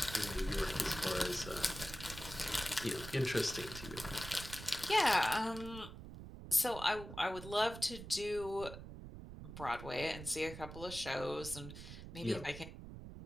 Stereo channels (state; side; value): noise; right; rumble, 12 dB below the sound